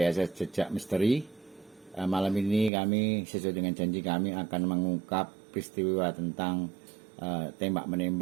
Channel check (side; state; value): left; drops out; at 2.7 s